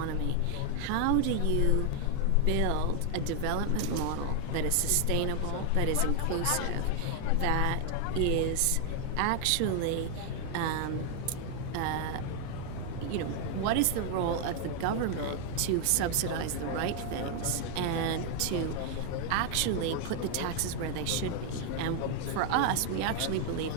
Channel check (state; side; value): different; both; correlation 0.00